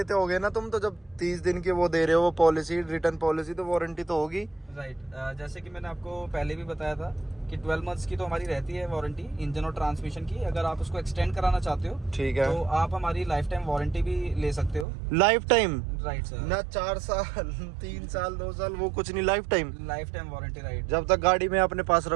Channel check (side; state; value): left; drops out; at 14.9 s